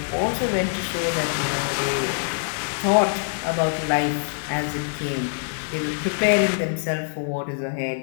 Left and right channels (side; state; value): right; silent; digital silence